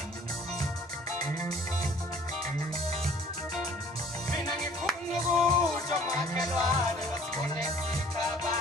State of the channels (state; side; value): normal; both; correlation 0.54